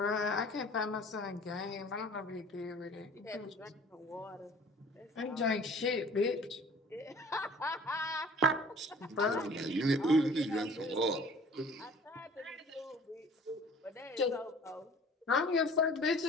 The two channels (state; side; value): normal; both; correlation 0.49